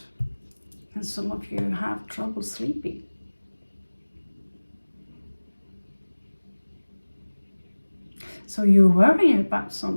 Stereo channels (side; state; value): both; inverted; correlation -1.00